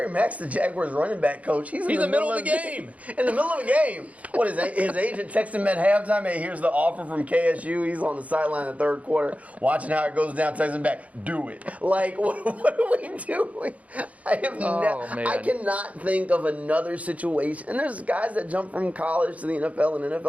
Mack's the Jaguars running back coach. He's in the middle of the game. In the middle of the game. What is his agent texted him at halftime? Hey, here's the offer from KSU. He's on the sideline in the third quarter, watching how it goes down. Texting back, do it. Like, what are we doing? I cannot think of another situation. And there's guys that jump from college to the NFL and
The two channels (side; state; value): left; late; 0.068 ms